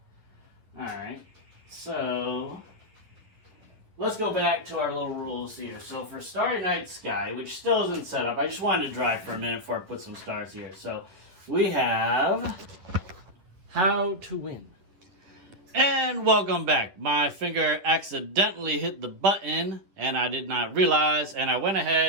Alright, so let's go back to our little rules here. So for Starry Night Sky, which still isn't set up, I just wanted to dry for a minute before I put some stars here. So we have How to Win. And welcome back. My finger accidentally hit the button and I did not realize, and I went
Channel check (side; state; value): left; late; 11 ms